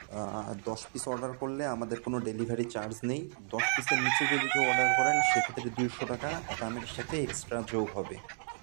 ১০ পিস অর্ডার করলে আমাদের কোনো ডেলিভারি চার্জ নেই। ১০ পিসের নিচে যদি কেউ অর্ডার করেন সেক্ষেত্রে ২০০ টাকা দামের সাথে এক্সট্রা যোগ হবে।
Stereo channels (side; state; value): left; silent; digital silence